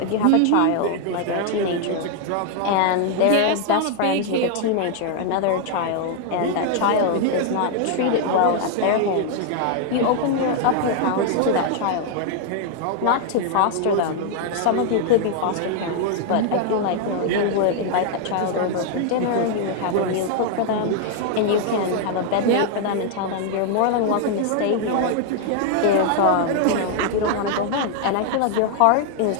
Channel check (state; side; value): different; both; correlation 0.00